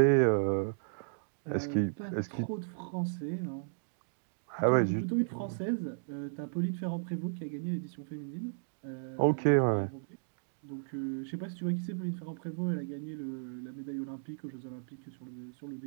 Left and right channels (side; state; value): left; silent; digital silence